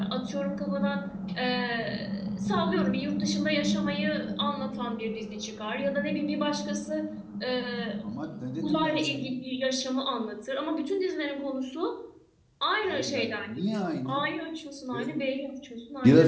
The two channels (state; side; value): identical; both; correlation 1.00